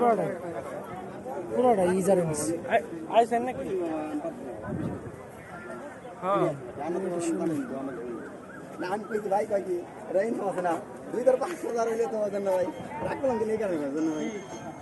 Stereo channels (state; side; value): identical; both; correlation 1.00